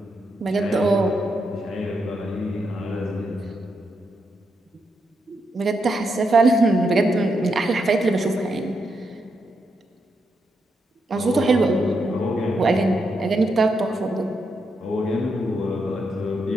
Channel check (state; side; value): normal; both; correlation 0.82